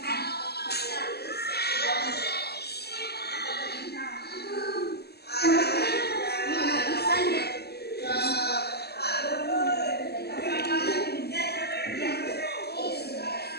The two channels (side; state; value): right; late; 0.47 ms